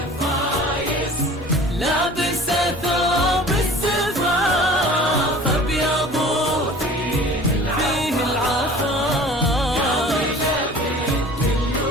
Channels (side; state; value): both; normal; correlation 0.45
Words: لابسة ثوب الزفاف أبيض فيه العفاف،